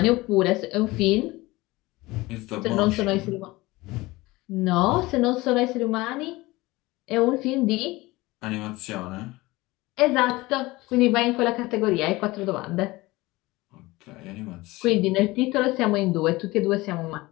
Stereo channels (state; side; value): quieter; right; 20.6 dB